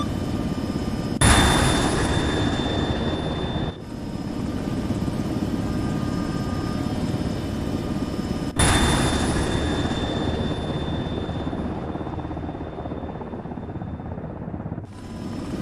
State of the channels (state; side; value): identical; both; correlation 1.00